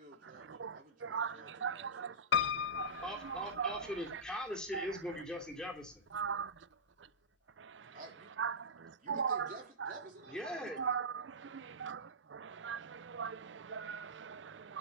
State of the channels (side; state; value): both; normal; correlation -0.16